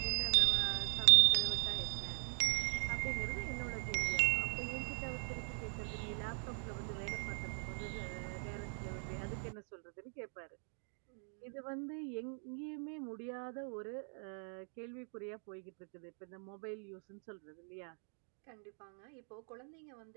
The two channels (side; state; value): left; silent; 51 dB below the other